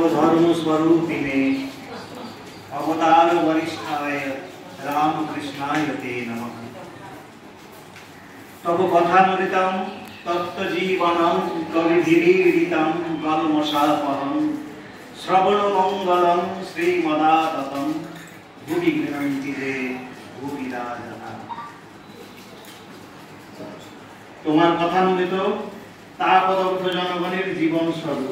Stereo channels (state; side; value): identical; both; correlation 1.00